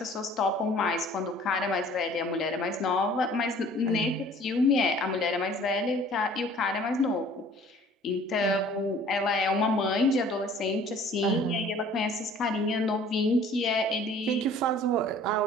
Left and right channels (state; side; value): normal; both; correlation 0.51